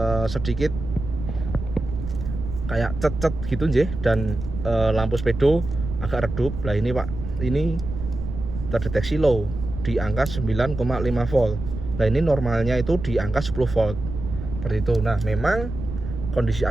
sedikit kayak cet-cet gitu nggih, dan lampu speedo agak redup. Lah ini Pak, ini terdeteksi low di angka 9,5 volt. Nah ini normalnya itu di angka 10 volt. Seperti itu. Nah memang kondisi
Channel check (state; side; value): noise; right; rumble, 8 dB below the sound